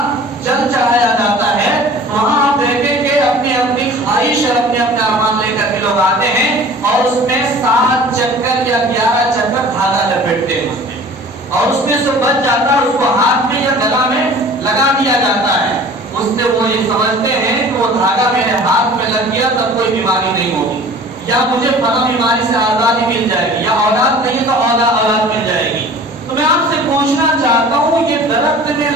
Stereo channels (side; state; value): both; normal; correlation 0.45